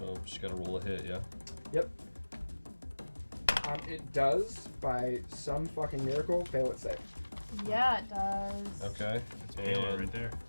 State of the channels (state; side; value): inverted; both; correlation -1.00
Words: just gotta roll a hit, yeah. Yep. It does, by some fucking miracle, fail its save. Yeah, it does. Okay. It's Halo right there.